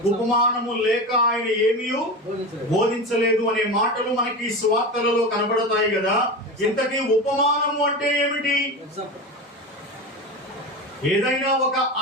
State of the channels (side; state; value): both; normal; correlation 0.24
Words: ఉపమానము లేక ఆయన ఏమీ బోధించలేదు అనే మాటలు మనకి సువార్తలలో కనబడతాయి కదా. ఇంతకీ ఉపమానము అంటే ఏమిటి? ఏదైనా ఒక